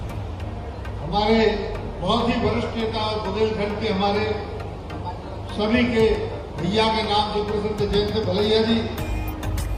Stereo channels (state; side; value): identical; both; correlation 1.00